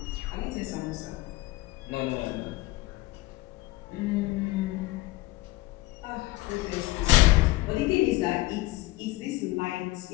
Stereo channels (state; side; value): quieter; right; 19.3 dB